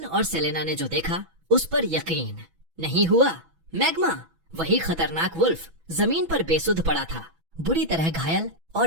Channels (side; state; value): left; late; 6.1 ms